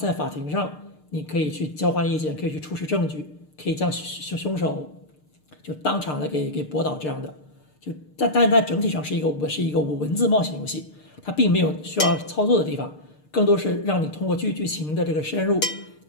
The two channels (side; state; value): right; late; 6.6 ms